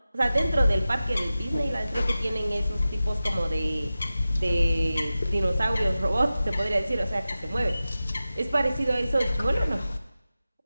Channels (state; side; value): inverted; both; correlation -0.95